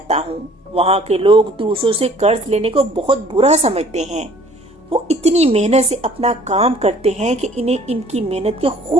ہوں وہاں کے لوگ دوسروں سے قرض لینے کو بہت برا سمجھتے ہیں۔ وہ اتنی محنت سے اپنا کام کرتے ہیں کہ انہیں ان کی محنت کے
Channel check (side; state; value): both; normal; correlation 0.54